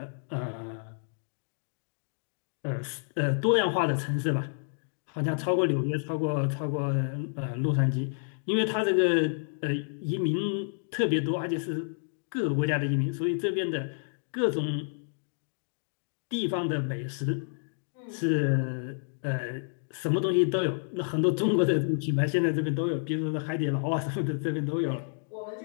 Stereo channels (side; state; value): right; silent; digital silence